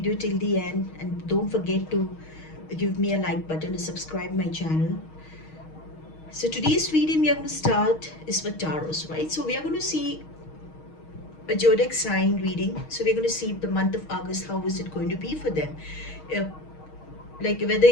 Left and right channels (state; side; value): late; right; 6.4 ms